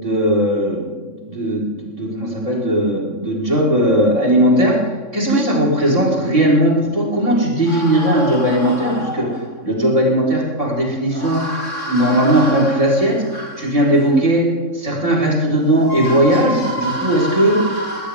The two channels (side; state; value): right; late; 3.6 ms